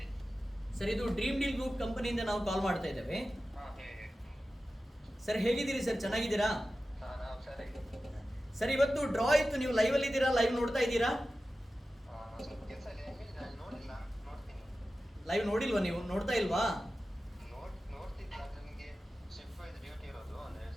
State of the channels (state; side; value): normal; both; correlation 0.94